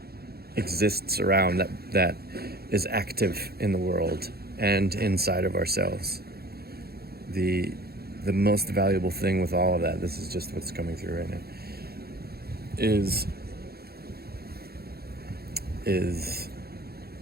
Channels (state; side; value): late; left; 0.46 ms